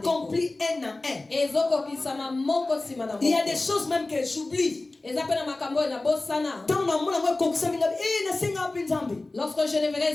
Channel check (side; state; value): right; quieter; 3.1 dB